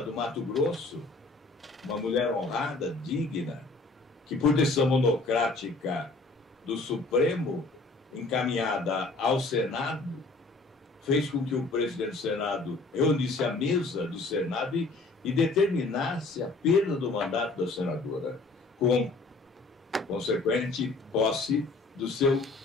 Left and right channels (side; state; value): right; quieter; 3.4 dB